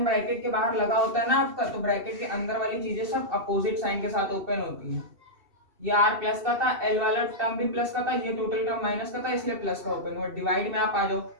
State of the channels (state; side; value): late; left; 2.7 ms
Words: ब्रैकेट के बाहर लगा होता है ना आपका, तो ब्रैकेट के अंदर वाली चीजें सब अपोजिट साइन के साथ ओपन होती है। ये r प्लस का था, एल वाला टर्म भी प्लस का था, ये टोटल टर्म माइनस का था इसलिए प्लस का ओपन हुआ। डिवाइड में आप आ जाओ,